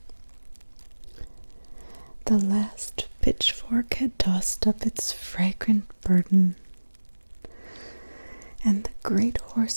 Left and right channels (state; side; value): inverted; both; correlation -1.00